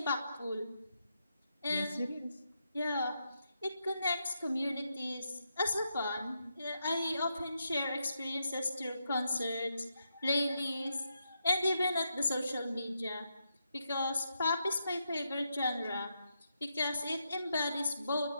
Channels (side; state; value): both; inverted; correlation -0.83